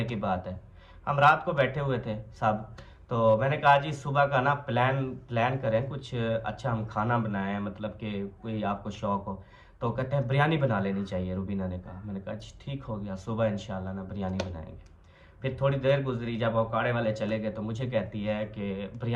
की बात है, हम रात को बैठे हुए थे सब, तो मैंने कहा जी सुबह का ना प्लान करें कुछ अच्छा, हम खाना बनाएं, मतलब कि कोई आपको शौक हो। तो कहते हैं बिरयानी बना लेनी चाहिए, रुबीना ने कहा। मैंने कहा जी ठीक हो गया, सुबह इंशाल्लाह ना बिरयानी बनाएंगे। फिर थोड़ी देर गुजरी, जब औकाड़े वाले चले गए तो मुझे कहती है कि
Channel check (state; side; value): identical; both; correlation 1.00